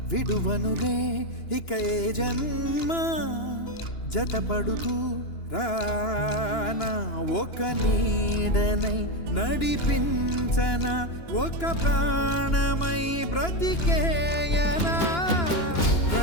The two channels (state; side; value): late; right; 2.9 ms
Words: విడువనులే ఇక ఏ జన్మ జతపడుతూ రానా ఒక నీడనై నడిపించన ఒక ప్రాణమై బ్రతికేయనా